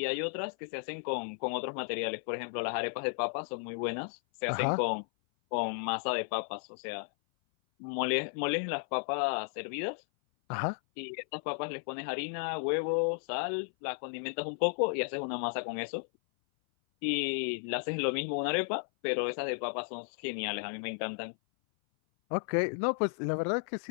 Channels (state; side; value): silent; right; 55 dB below the other